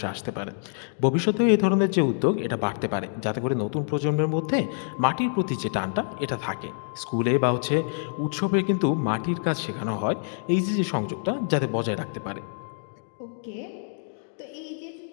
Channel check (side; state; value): right; silent; digital silence